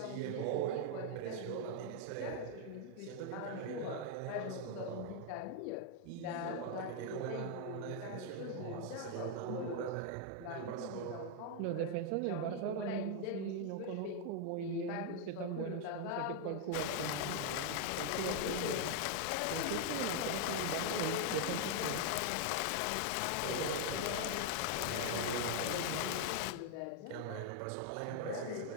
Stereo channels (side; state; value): both; different; correlation 0.00